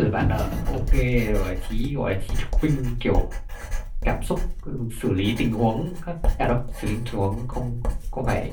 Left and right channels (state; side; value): identical; both; correlation 1.00